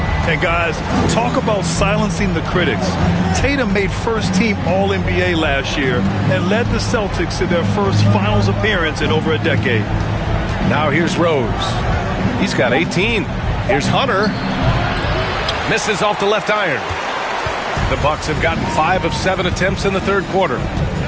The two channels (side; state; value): both; identical; correlation 1.00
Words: And guys, talk about silencing the critics. Tatum made first-team All-NBA last year and led the Celtics to their first finals appearance in over a decade. Now here's Rose. He's got 18. Here's Hunter. Misses off the left iron. The Bucks have gotten 5 of 7 attempts in the third quarter.